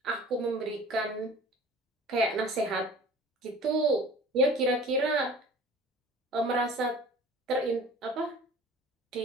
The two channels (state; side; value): normal; both; correlation 0.45